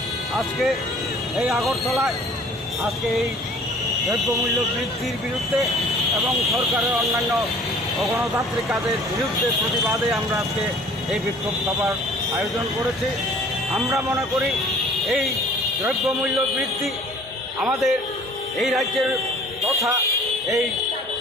আজকে এই আগরতলায় আজকে এই দ্রব্যমূল্য বৃদ্ধির বিরুদ্ধে এবং সরকারের অন্যান্য অগণতান্ত্রিক কাজের বিরুদ্ধে প্রতিবাদে আমরা আজকে এই বিক্ষোভ সভার আয়োজন করেছি। আমরা মনে করি এই দ্রব্যমূল্য বৃদ্ধি আমাদের এই রাজ্যের তথা এই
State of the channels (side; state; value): both; normal; correlation 0.50